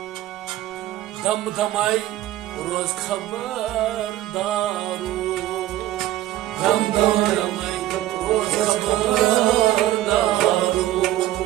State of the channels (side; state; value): left; quieter; 14.4 dB